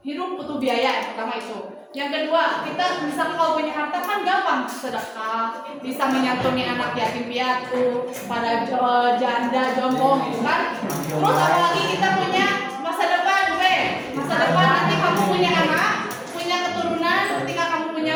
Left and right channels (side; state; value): both; identical; correlation 1.00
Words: hidup butuh biaya, yang pertama itu. Yang kedua, kita bisa kalau punya harta kan gampang sedekah, bisa menyantuni anak yatim piatu, para janda, jomblo gitu kan. Terus apalagi kita punya masa depan, masa depan nanti kamu punya anak, punya keturunan, ketika kamu